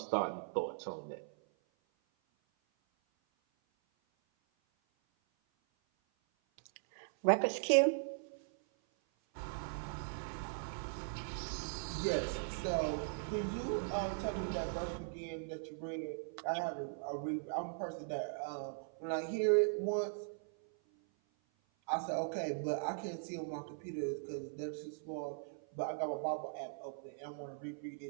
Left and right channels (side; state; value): left; silent; 51 dB below the other